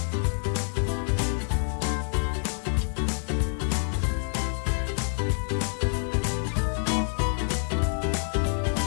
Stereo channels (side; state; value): right; silent; 56 dB below the other